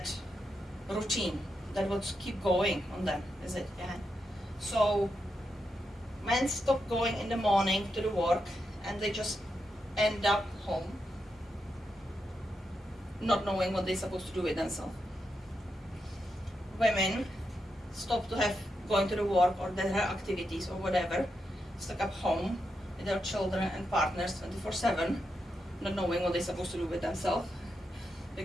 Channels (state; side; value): normal; both; correlation 0.85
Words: routine that would keep going on them, is it? Yeah. So men stop going in the morning to the work and they just end up home, not knowing what they're supposed to do with themselves. Women stop to have going to the work or their activities or whatever, stuck up home with their children and partners 24/7, not knowing what they're supposed to do with themselves,